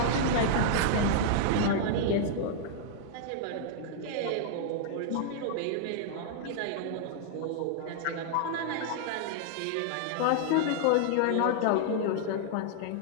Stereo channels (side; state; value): both; different; correlation -0.01